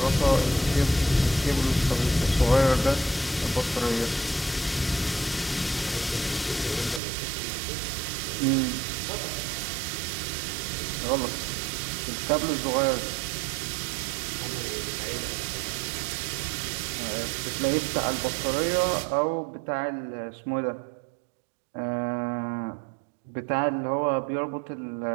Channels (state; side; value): drops out; left; at 7.0 s